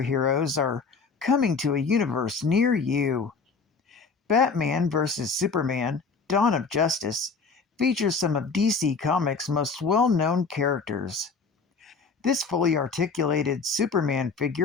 are coming to a universe near you. Batman vs. Superman Dawn of Justice features some of DC Comics' most well-known characters. This fully articulated Superman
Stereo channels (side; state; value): right; quieter; 4.7 dB